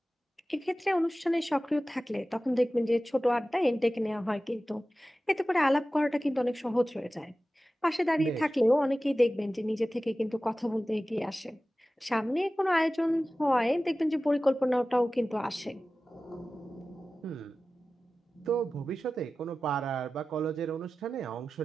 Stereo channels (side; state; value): both; normal; correlation 0.96